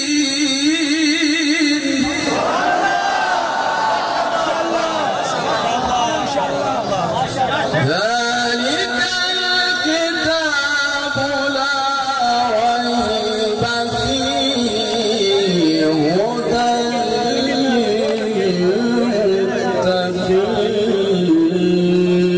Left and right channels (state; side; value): identical; both; correlation 1.00